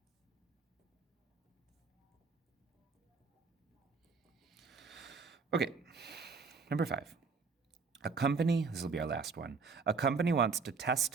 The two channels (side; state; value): left; quieter; 4.9 dB